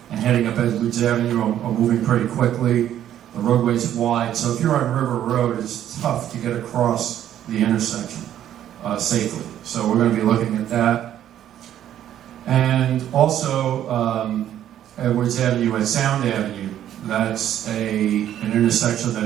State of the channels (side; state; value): left; quieter; 11.2 dB